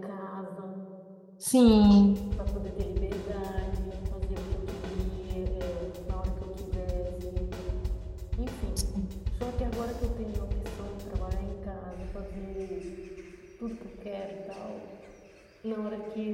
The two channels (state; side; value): identical; both; correlation 1.00